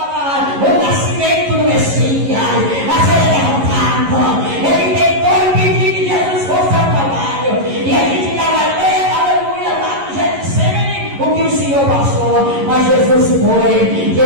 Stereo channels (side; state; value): left; late; 11 ms